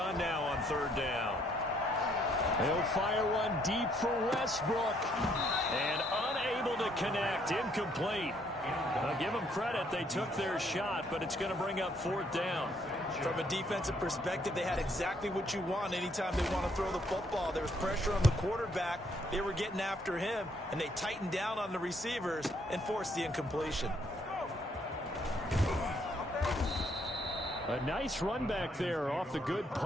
now on 3rd down. He'll fire one deep for Westbrook. And unable to connect. Incomplete. Now, give them credit. They took their shot, but it's going to bring up 4th down. From a defensive perspective, they had exactly what you want anytime they want to throw the football. There was pressure on the quarterback. They were getting after him, and they tightened down on the receivers and forced the incompletion. A nice run back there off the good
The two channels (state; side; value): normal; both; correlation 0.68